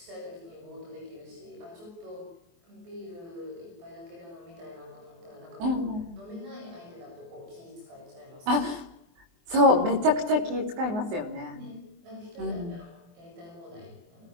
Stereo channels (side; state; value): left; late; 24 ms